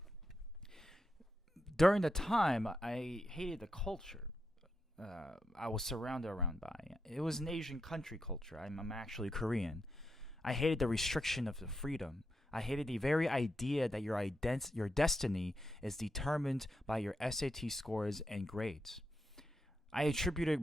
During the time, I hated the culture I was surrounded around by. It was an Asian country culture. I'm actually Korean. I hated the restriction of the freedom. I hated the very idea that your destiny is determined by your SAT scores and grades. I attributed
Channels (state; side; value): normal; both; correlation 0.85